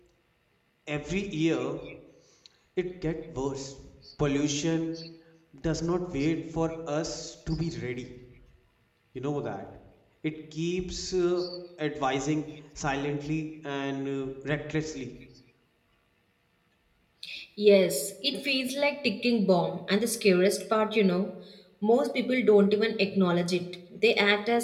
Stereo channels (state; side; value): identical; both; correlation 1.00